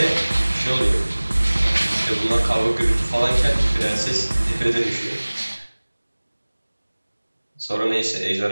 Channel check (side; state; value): both; inverted; correlation -1.00